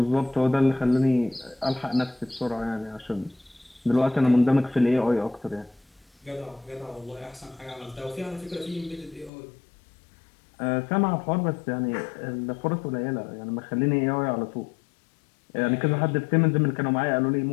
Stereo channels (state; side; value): drops out; right; at 9.3 s